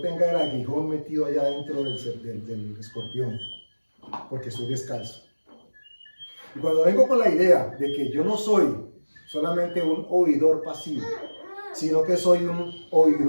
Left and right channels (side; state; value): both; inverted; correlation -1.00